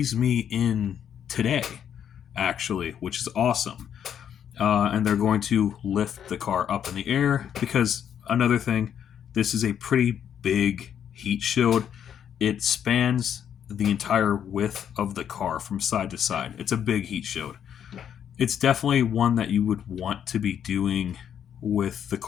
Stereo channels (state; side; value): quieter; right; 8.9 dB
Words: me in today, actually, which is awesome. And they're going to lift the car up in the air because another thing, this is a pretty big heat shield. It spans the entire width of the car from side to side. It's a big heat shield. It's definitely one that you would want to be doing with the